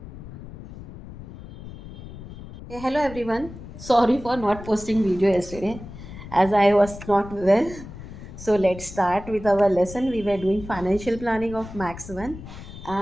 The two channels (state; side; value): noise; left; rumble, 14 dB below the sound